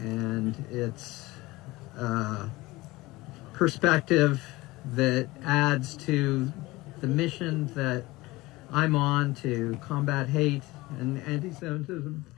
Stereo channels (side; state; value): right; quieter; 20.4 dB